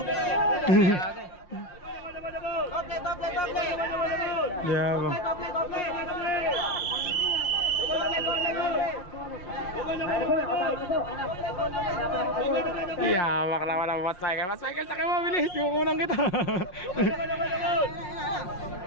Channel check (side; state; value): right; late; 5.6 ms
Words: Yeah, iyamak naman ang Boss Michael. Boss Michael, sakay mo, bilis. Kukunan kita.